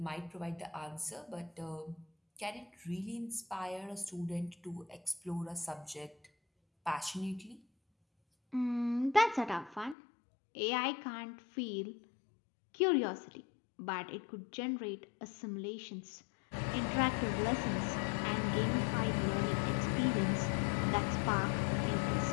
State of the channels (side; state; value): right; drops out; at 10.0 s